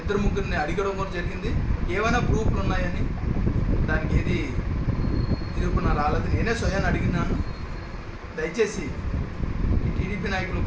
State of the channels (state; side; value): identical; both; correlation 1.00